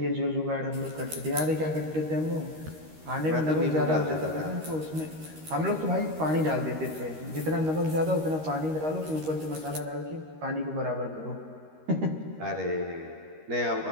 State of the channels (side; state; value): left; late; 13 ms